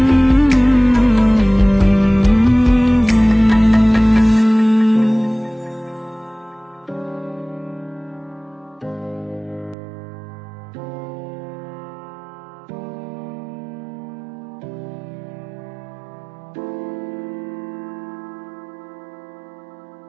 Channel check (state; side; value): drops out; left; at 9.8 s